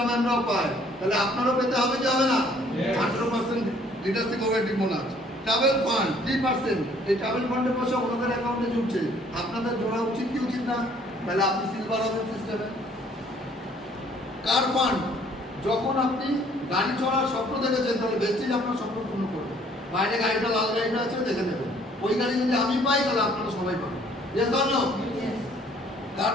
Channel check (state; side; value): normal; both; correlation 0.60